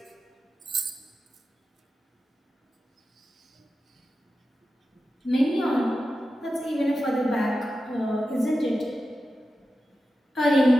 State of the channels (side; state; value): both; normal; correlation 0.92